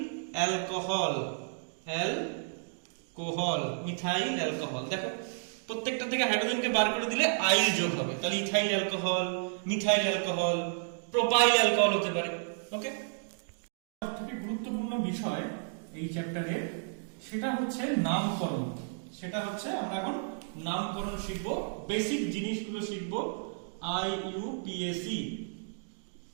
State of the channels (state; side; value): silent; left; digital silence